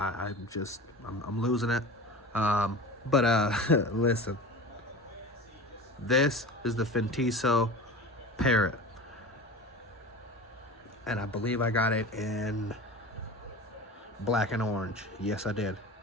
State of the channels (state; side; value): normal; both; correlation 0.33